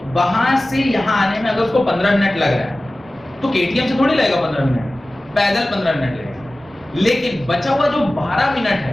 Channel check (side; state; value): both; normal; correlation 0.97